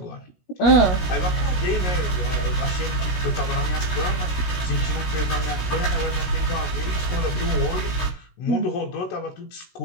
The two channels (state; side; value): late; right; 16 ms